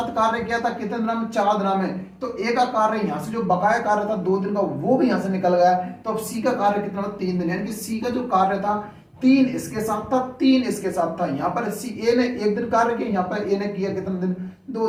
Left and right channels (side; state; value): both; identical; correlation 1.00